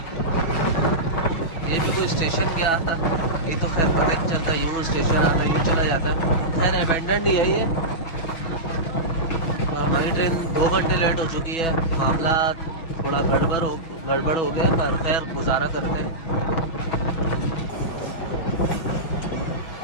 ये भी कोई स्टेशन गया था, ये तो खैर पता नहीं चलता, यूँ स्टेशन आता यूँ चला जाता। खैर अबेंडन नहीं है ये। हमारी ट्रेन 2 घंटे लेट हो चुकी है, मामला थोड़ा गड़बड़ हो गया, पर खैर गुजारा करते हैं।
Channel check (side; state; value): right; late; 6.1 ms